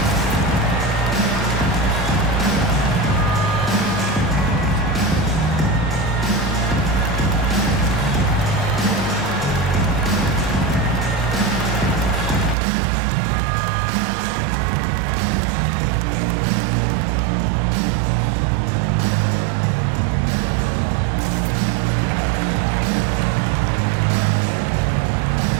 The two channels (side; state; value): left; drops out; at 12.6 s